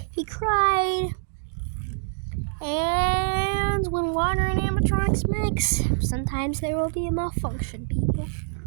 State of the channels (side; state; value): left; silent; 62 dB below the other